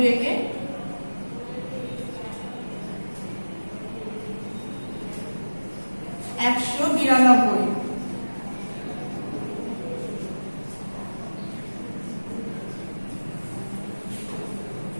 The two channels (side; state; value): both; inverted; correlation -1.00